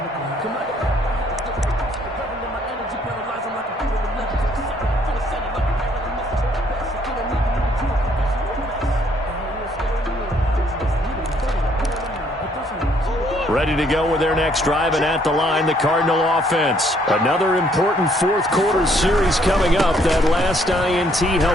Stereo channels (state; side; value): normal; both; correlation 0.66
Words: Ready to go with their next drive, and at the line, the Cardinal offense. Another important 4th quarter series coming up. That last INT